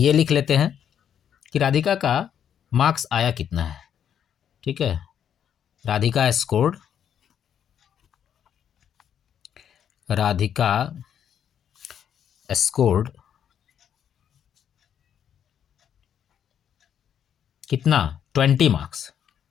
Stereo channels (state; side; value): quieter; right; 9.0 dB